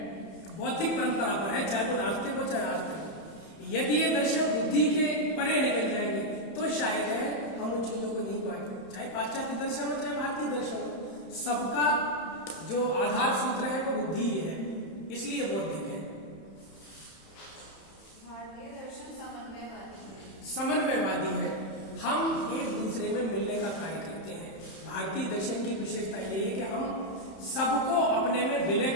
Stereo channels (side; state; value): right; late; 31 ms